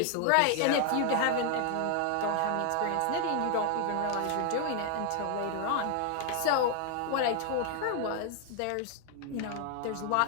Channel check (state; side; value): different; both; correlation 0.00